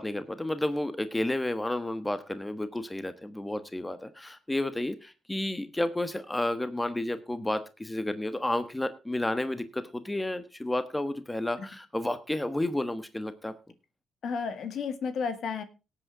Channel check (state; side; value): normal; both; correlation 0.96